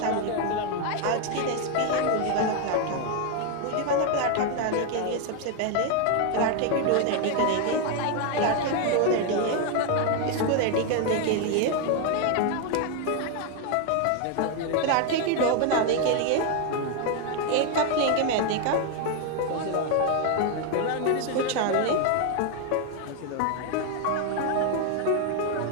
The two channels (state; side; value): different; both; correlation 0.01